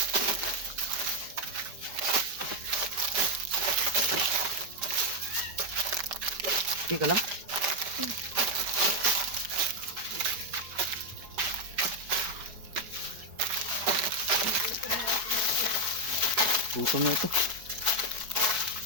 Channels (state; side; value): late; left; 4.7 ms